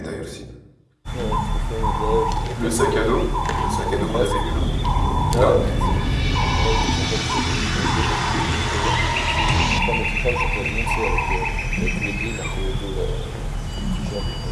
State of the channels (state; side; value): identical; both; correlation 1.00